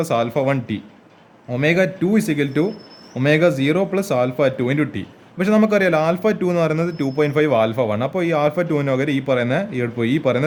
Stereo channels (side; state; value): both; identical; correlation 1.00